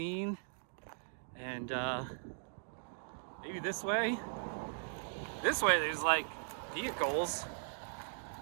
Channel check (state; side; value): silent; left; digital silence